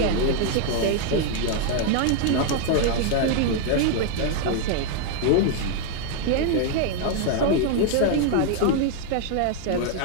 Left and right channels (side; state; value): both; different; correlation 0.00